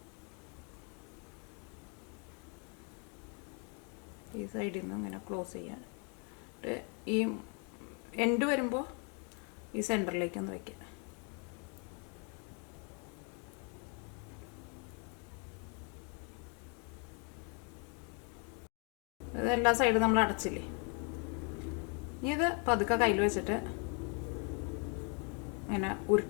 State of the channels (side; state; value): right; quieter; 37.5 dB